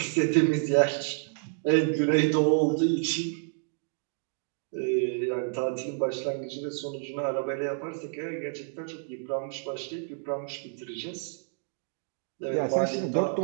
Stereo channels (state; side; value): silent; left; 58 dB below the other